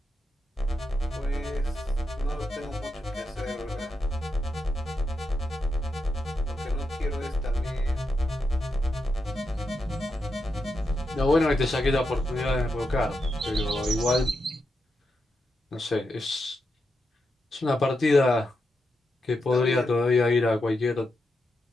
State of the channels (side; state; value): both; normal; correlation 0.85